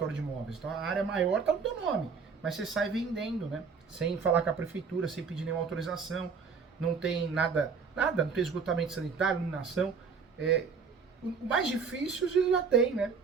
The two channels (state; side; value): quieter; left; 5.5 dB